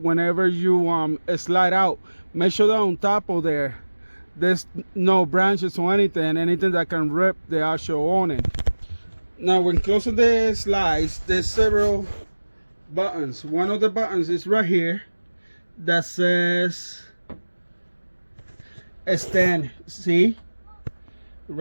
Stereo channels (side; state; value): both; inverted; correlation -1.00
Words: you slide out. Make sure that on top of there's no branches or anything that can rip the actual awning. Now when closing the slides, there's several buttons. One of the buttons is right here that says extend. See,